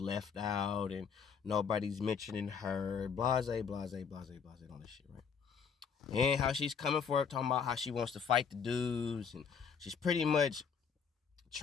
out and nobody's mentioning her, blase, blase, blase, blase, all this shit, right? And how she's coming for it, talking about how she wants to fight the dudes, and she's pretty much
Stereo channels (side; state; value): right; quieter; 6.5 dB